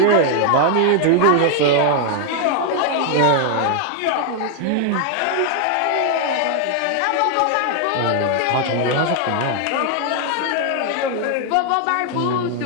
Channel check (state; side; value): different; both; correlation 0.00